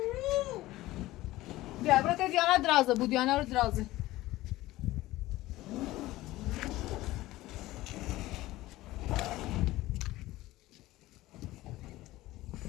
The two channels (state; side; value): quieter; right; 17.3 dB